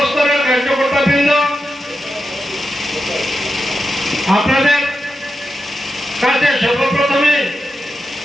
কার্যকর্তাবৃন্দ, আপনাদের কাছে সর্বপ্রথমে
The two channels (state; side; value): normal; both; correlation 0.88